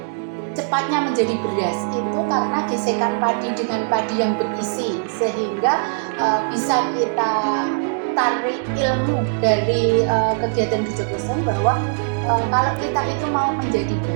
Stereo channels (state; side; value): silent; left; digital silence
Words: cepatnya menjadi beras itu karena gesekan padi dengan padi yang berisi, sehingga bisa kita tarik ilmu dari kegiatan Gejogleseng bahwa kalau kita itu mau menjadi